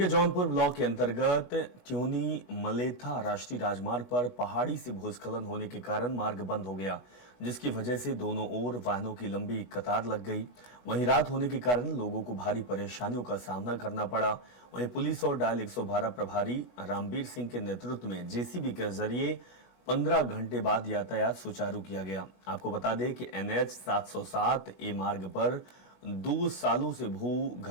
जौनपुर ब्लॉक के अंतर्गत ट्यूनी मलेथा राष्ट्रीय राजमार्ग पर पहाड़ी से भूस्खलन होने के कारण मार्ग बंद हो गया, जिसकी वजह से दोनों ओर वाहनों की लंबी कतार लग गई। वहीं रात होने के कारण लोगों को भारी परेशानियों का सामना करना पड़ा। वहीं पुलिस और डायल 112 प्रभारी रामबीर सिंह के नेतृत्व में जेसीबी के जरिए 15 घंटे बाद यातायात सुचारू किया गया। आपको बता दें कि NH 707 ए मार्ग पर 2 सालों से भू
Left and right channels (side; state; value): right; late; 16 ms